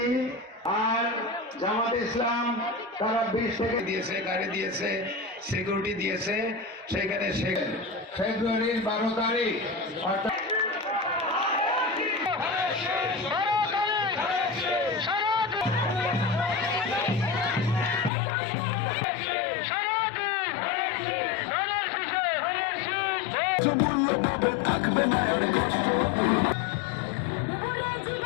আর জামাত ইসলাম তারা 20 থেকে দিয়েছে, গাড়ি দিয়েছে, সিকিউরিটি দিয়েছে। সেখানে ফেব্রুয়ারির 12 তারিখ অর্থাৎ মূল্য পাবে, থাকবে না আর কষ্ট।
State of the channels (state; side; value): drops out; right; at 18.1 s